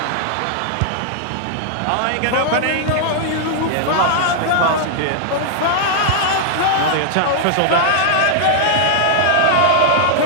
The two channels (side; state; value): both; different; correlation -0.01